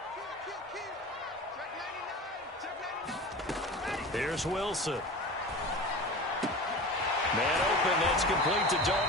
Here's Wilson. Man open, that's complete to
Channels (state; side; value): normal; both; correlation 0.33